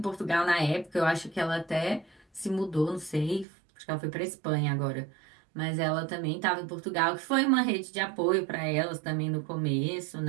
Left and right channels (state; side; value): drops out; left; at 3.5 s